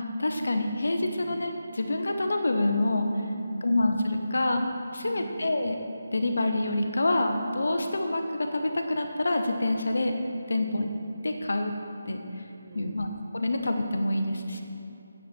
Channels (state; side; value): inverted; both; correlation -0.92